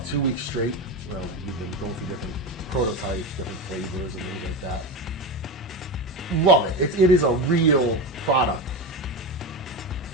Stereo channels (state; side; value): normal; both; correlation 0.19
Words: 2 weeks straight. Well, we've been going through different prototypes, different flavors and things like that. Love it. It is a real product.